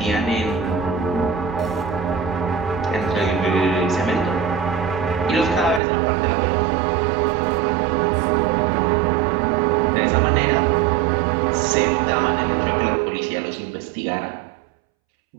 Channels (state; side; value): drops out; left; at 5.8 s